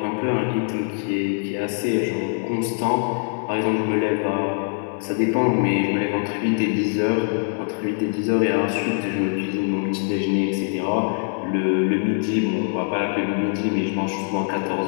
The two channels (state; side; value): silent; right; 62 dB below the other